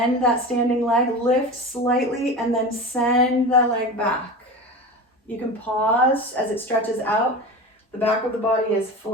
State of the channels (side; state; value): both; normal; correlation 0.29